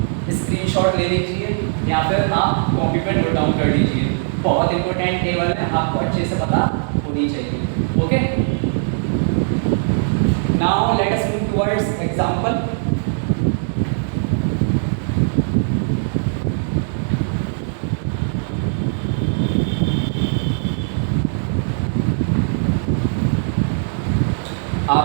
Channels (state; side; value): silent; left; digital silence